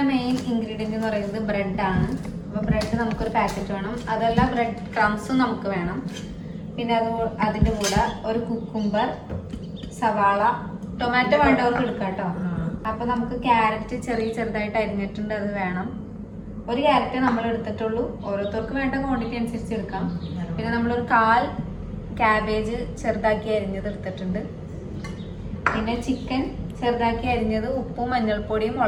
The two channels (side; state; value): both; identical; correlation 1.00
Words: മെയിൻ ഇൻഗ്രീഡിയൻറ്റ് എന്ന് പറയുന്നത് ബ്രെഡാണ്. അപ്പോൾ ബ്രെഡ് നമുക്കൊരു പാക്കറ്റ് വേണം. അതല്ല ബ്രെഡ് ക്രംസും നമുക്ക് വേണം. പിന്നെ അതിൻ്റെ കൂടെ ഒരു കുക്കുംബർ, സവാള, ടൊമാറ്റോ വേണ്ടവർക്ക് എടുക്കാം കേട്ടോ. അപ്പോൾ നമുക്ക് ക്യാരറ്റ് ചെറുതായിട്ട് അരിഞ്ഞിട്ടുണ്ട്, അത് വേണം. ഒരു ക്യാരറ്റ് നമ്മൾ എടുത്തിട്ടുള്ളൂ, ഓരോരുത്തർക്ക് വേണ്ട ക്വാണ്ടിറ്റി അനുസരിച്ച് എടുക്കാം. പിന്നെ നമ്മളൊരു 1/4 ക്യാബേജ് ചെറുതാക്കി അരിഞ്ഞത് എടുത്തിട്ടുണ്ട്. പിന്നെ ചിക്കൻ ചെറുതാക്കി അരിഞ്ഞത് ഉപ്പും മഞ്ഞൾപ്പൊടിയും